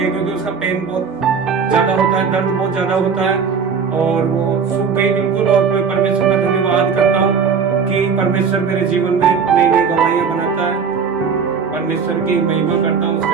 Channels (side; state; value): left; quieter; 6.0 dB